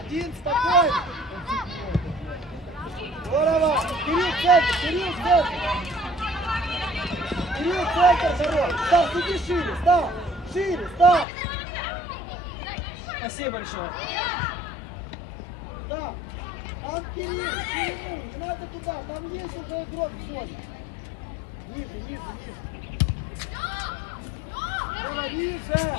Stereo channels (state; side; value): drops out; right; at 11.2 s